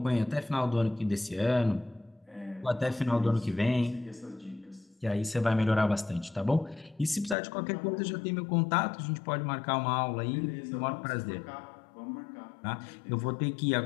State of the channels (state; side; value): drops out; right; at 7.4 s